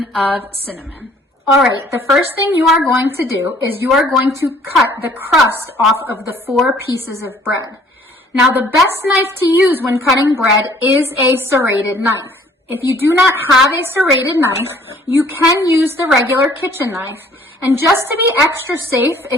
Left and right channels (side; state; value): both; normal; correlation 0.57